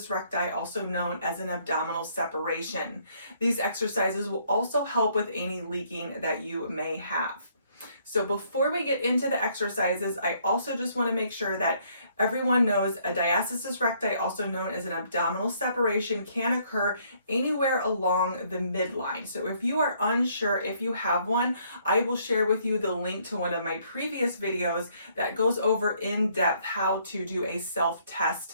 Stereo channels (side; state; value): both; inverted; correlation -0.66